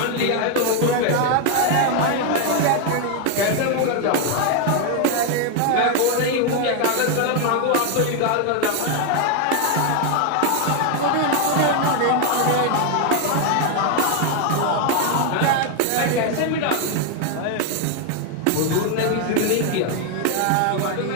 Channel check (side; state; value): both; different; correlation 0.01